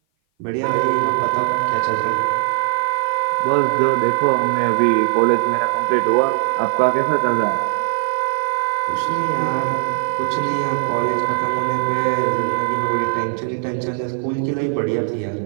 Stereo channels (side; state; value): left; silent; 57 dB below the other